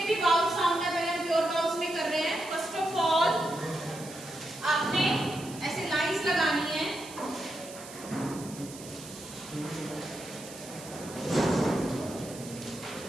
भी वाउल साउंड है, पहले हम प्योर वाउल्स में कर रहे हैं। फर्स्ट ऑफ ऑल आपने ऐसे लाइंस लगानी है।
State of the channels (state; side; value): noise; right; hiss, 15 dB below the sound